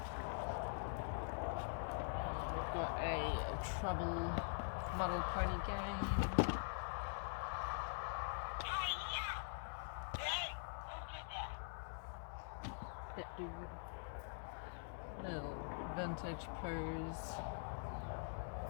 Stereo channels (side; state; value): right; silent; digital silence